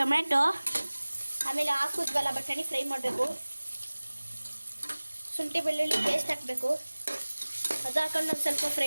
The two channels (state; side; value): inverted; both; correlation -1.00